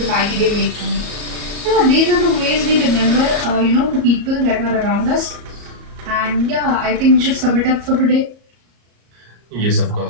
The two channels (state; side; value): late; left; 34 ms